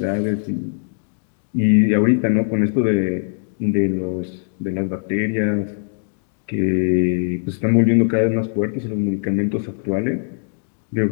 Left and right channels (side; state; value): right; silent; digital silence